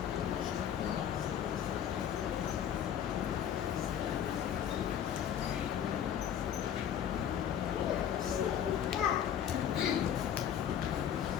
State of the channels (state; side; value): quieter; right; 9.4 dB